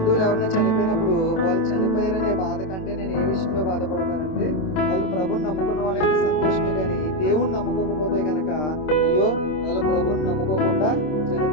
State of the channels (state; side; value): late; right; 26 ms